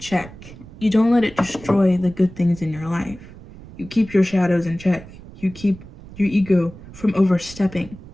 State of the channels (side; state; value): right; noise; rumble, 17 dB below the sound